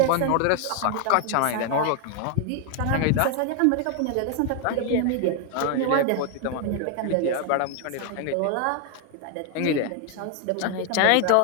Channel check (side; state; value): both; different; correlation 0.00